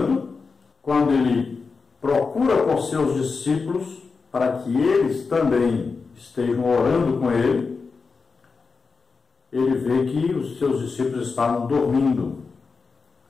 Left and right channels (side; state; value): right; quieter; 4.7 dB